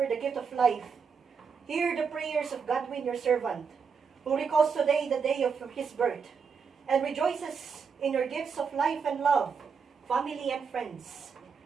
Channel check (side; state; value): left; quieter; 5.9 dB